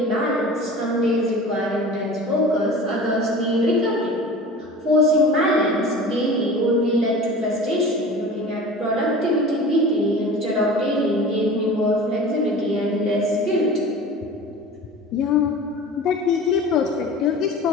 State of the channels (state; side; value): normal; both; correlation 0.38